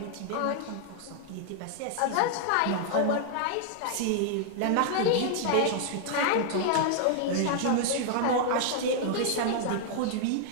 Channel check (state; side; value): different; both; correlation -0.01